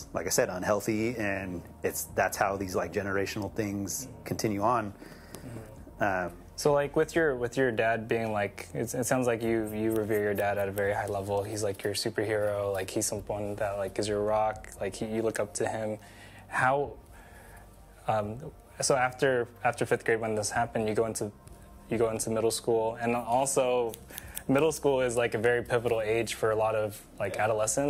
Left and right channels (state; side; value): identical; both; correlation 1.00